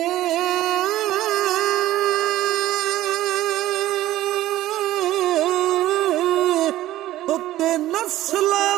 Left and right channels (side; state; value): left; quieter; 14.9 dB